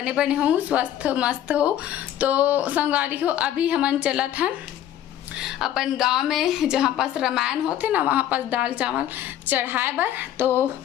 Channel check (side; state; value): right; quieter; 11.5 dB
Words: बने हो, स्वस्थ मस्त हो। तो संगवारी हो अभी हमन चलत हैं अपन गांव में, जहाँ पास रामायण होते ना वहाँ पास दाल चावल चढ़ाए बर। तो